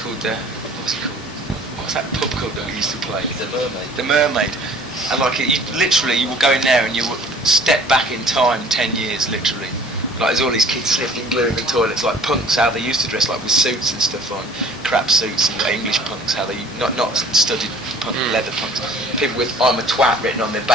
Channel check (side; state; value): both; normal; correlation 0.51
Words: what's it called? What's that pub called that we used to play? The Mermaid. The Mermaid. And like you will go in there and you will step back in time 10 years, literally. Like there's all these kids slipping glue in the toilets, like punks how they used to dress, like with suits and stuff on, crap suits and English punks, how they not studied punk, leather punks, people with "I'm a twat" written on their